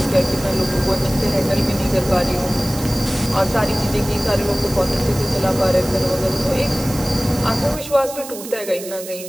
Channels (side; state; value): right; noise; hiss, 12 dB below the sound